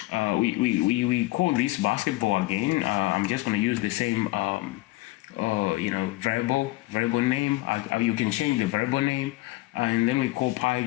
we call this basketball again. I'm just going to use the same variable name. You can change the variable name, and then we call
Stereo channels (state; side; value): quieter; right; 19.7 dB